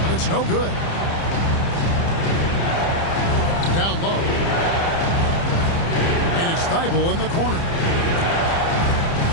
it's no good. Down low. And it's Thibault in the corner.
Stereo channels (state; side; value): late; right; 30 ms